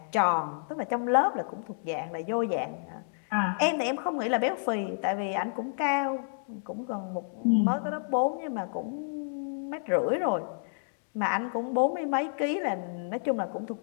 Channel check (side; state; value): right; silent; digital silence